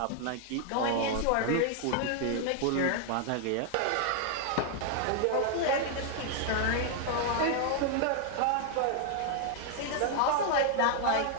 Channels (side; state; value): both; different; correlation 0.00